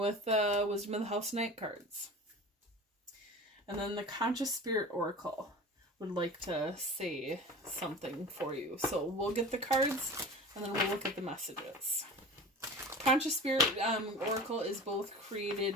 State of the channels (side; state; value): both; normal; correlation 0.36